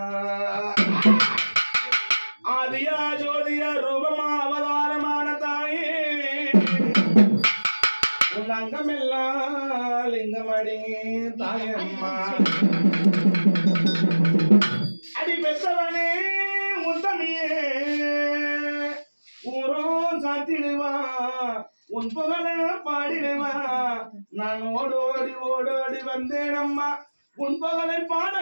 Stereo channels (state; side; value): inverted; both; correlation -1.00